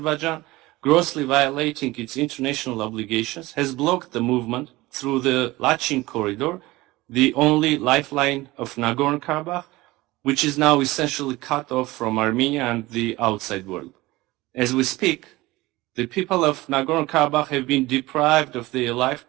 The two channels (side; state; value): left; quieter; 19.8 dB